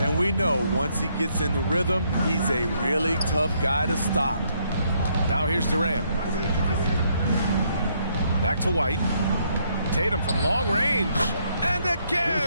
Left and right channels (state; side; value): inverted; both; correlation -0.72